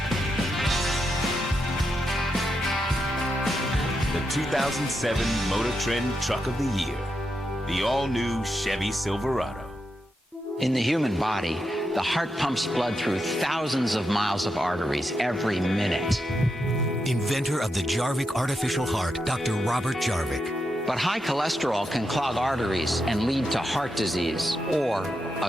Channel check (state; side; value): normal; both; correlation 0.85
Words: The 2007 Motor Trend Truck of the Year. The all-new Chevy Silverado. In the human body, the heart pumps blood through thousands of miles of arteries every minute. Inventor of the Jarvik artificial heart, Dr. Robert Jarvik. But high cholesterol can clog arteries and lead to heart disease or